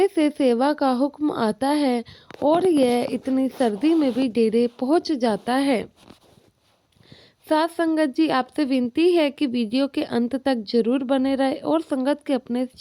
से सेवा का हुक्म आता है और यह इतनी सर्दी में भी डेरे पहुंच जाता है। साथ संगत जी, आपसे विनती है कि वीडियो के अंत तक जरूर बने रहे और संगत के अपने इस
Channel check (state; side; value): identical; both; correlation 1.00